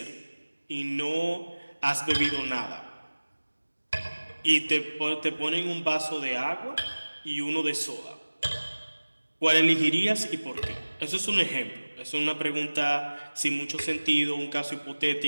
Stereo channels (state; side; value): inverted; both; correlation -1.00